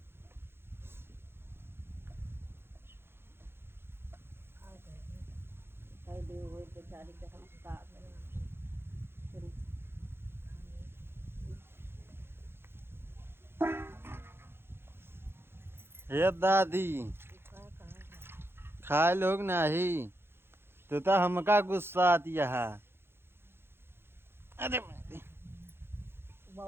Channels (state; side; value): late; left; 0.11 ms